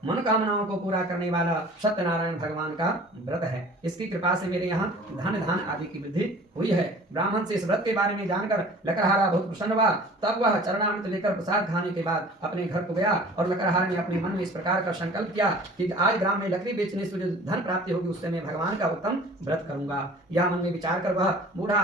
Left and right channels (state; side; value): normal; both; correlation 0.46